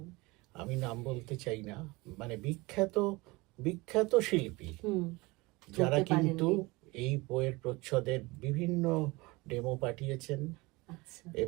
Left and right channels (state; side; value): quieter; left; 23.3 dB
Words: আমি নাম বলতে চাই না, মানে বিখ্যাত বিখ্যাত শিল্পী হুম যারা ধরতে কিন্তু পারেননি। এই বইয়ের প্রচ্ছদের বিভিন্ন ডেমো পাঠিয়েছেন, আচ্ছা।